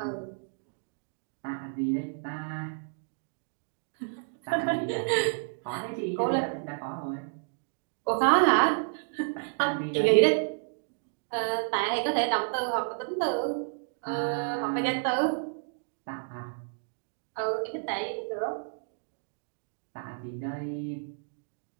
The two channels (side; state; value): left; silent; digital silence